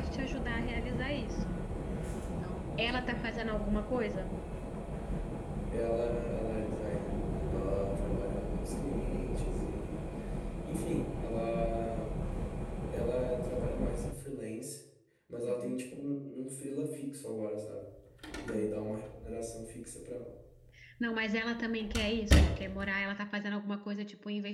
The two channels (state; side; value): identical; both; correlation 1.00